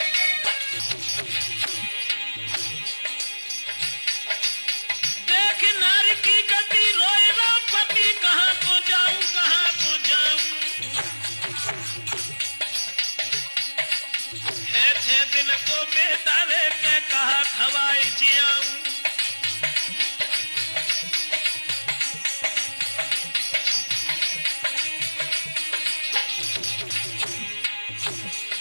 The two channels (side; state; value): both; inverted; correlation -1.00